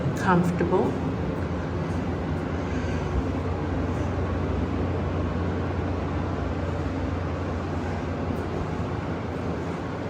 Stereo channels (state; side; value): identical; both; correlation 1.00